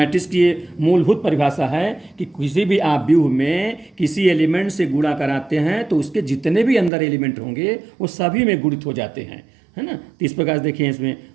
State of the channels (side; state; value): left; drops out; at 6.9 s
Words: की ये मूलभूत परिभाषा है कि किसी भी आप व्यूह में किसी एलिमेंट से गुणा कराते हैं तो उसके जितने भी अंदर एलिमेंट होंगे वो सभी में गुणित हो जाते हैं, है ना। तो इस प्रकार से देखिए इसमें